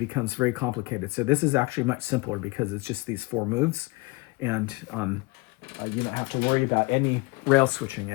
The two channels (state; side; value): quieter; right; 24.6 dB